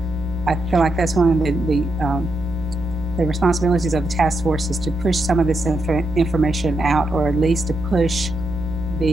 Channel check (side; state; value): right; noise; hum, 12 dB below the sound